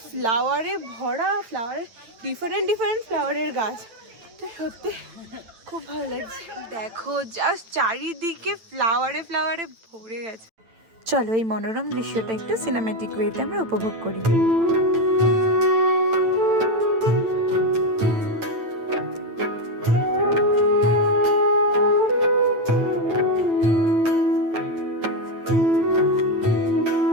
ফ্লাওয়ারে ভরা, ফ্লাওয়ারের ডিফারেন্ট ডিফারেন্ট ফ্লাওয়ারের গাছ। তো সত্যি খুব ভালো লাগছে। দেখো জাস্ট চারিদিকে ফ্লাওয়ারে ফ্লাওয়ারে ভরে গেছে। চলো এই মনোরম দৃশ্যটা একটু সিনেম্যাটিক ওয়েতে আমরা উপভোগ করি।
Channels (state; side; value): late; left; 8.9 ms